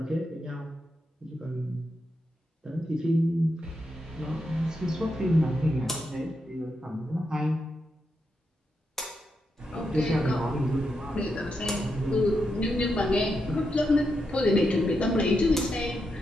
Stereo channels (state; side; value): normal; both; correlation 0.84